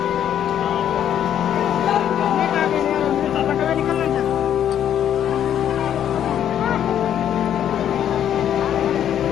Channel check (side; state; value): right; quieter; 10.0 dB